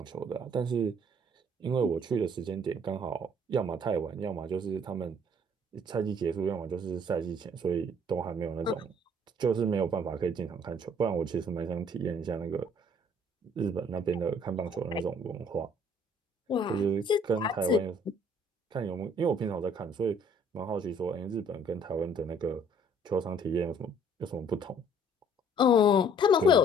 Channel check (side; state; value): both; normal; correlation 0.58